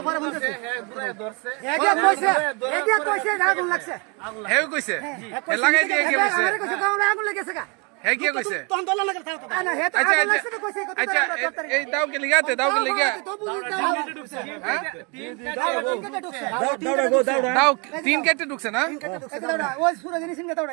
পরে বলতেছি এদিকে কইছে আগুন লাগছে। হেউ কইছে লাগাই দিয়ে কে কইছে আমারে কইছে কাউরে আগুন লাগেছে কা? হে কি কইছে তখন দলা লাগা থাকতো না হে তো আচ্ছা আগুন লাগছে তো কইছে কত আচ্ছা এই দাও কে লিগাতে দাও কে লিগা হ্যাঁ দাও তিন কেটে ঢুকছে না ওই সুরা জিনিস নিয়ে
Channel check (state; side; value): quieter; left; 32.4 dB